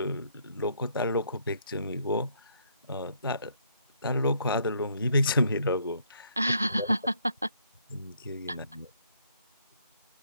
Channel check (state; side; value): inverted; both; correlation -0.69